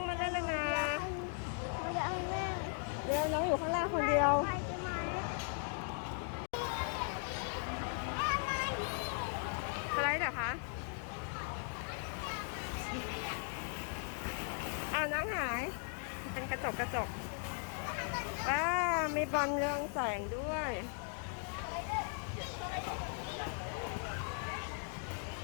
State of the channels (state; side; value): silent; right; 52 dB below the other